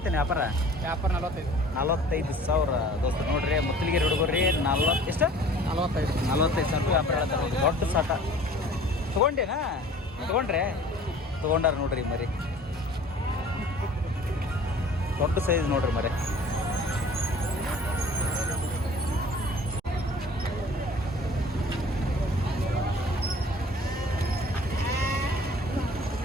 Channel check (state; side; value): normal; both; correlation 0.48